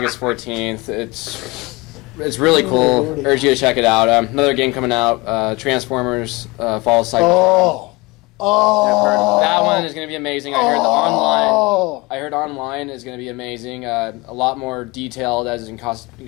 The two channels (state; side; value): quieter; right; 24.0 dB